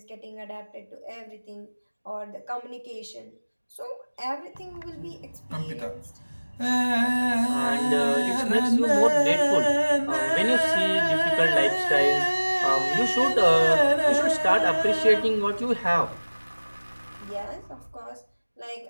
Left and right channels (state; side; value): inverted; both; correlation -1.00